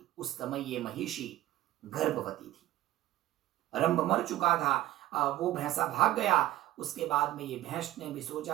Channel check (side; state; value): left; quieter; 15.0 dB